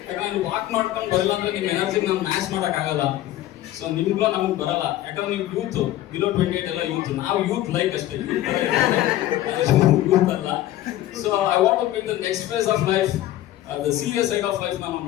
ಯಾಕಂದ್ರೆ ವಾಕ್ ಮಾಡ್ಕೊಂಡು ಬರಲ್ಲ ಅಂದ್ರೆ ನಿಮ್ಮ ಎನರ್ಜಿ ನಾನು ಮ್ಯಾಚ್ ಮಾಡಕ್ ಆಗಲ್ಲ. ಸೊ ನಿಮ್ಗೂ ನಮ್ಗೆ ಬರಲ್ಲ, ಯಾಕಂದ್ರೆ ನೀವು ಯೂತ್, ಬಿಲೋ 28 ಎಲ್ಲ ಯೂತ್. ನಾವು ಯೂತ್ ಲೈಕ್ ಅಷ್ಟೇ, ಯೂತ್ ಅಲ್ಲ. So I want to be the next phase of life, the serious side of life ನಾನು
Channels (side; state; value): right; quieter; 14.2 dB